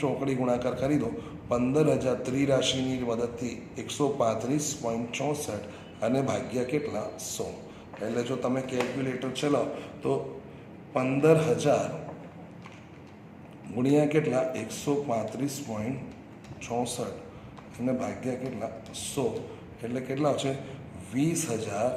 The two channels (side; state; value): both; identical; correlation 1.00